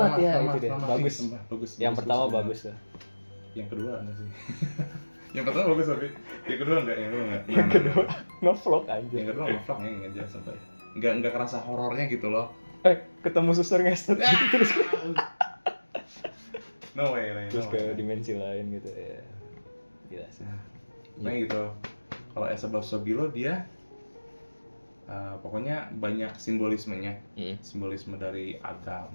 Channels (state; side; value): inverted; both; correlation -1.00